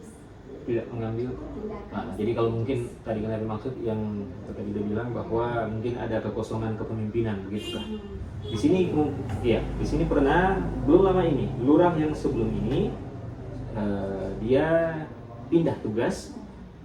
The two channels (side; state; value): both; identical; correlation 1.00